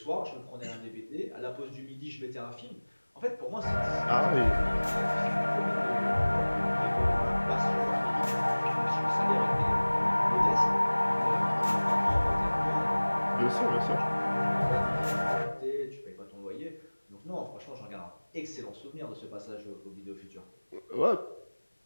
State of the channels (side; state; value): both; inverted; correlation -1.00